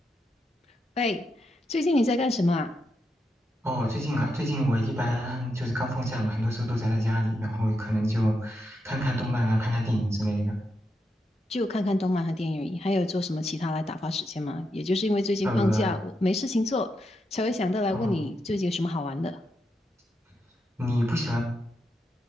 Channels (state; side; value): normal; both; correlation 0.84